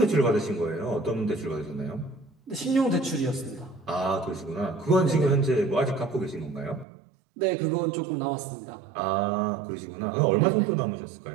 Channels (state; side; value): drops out; left; at 6.9 s